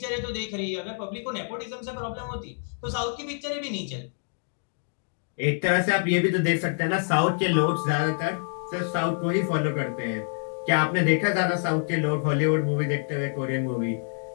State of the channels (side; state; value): right; silent; digital silence